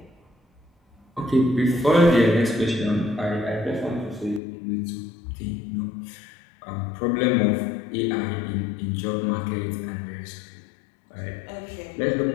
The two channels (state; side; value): drops out; right; at 4.4 s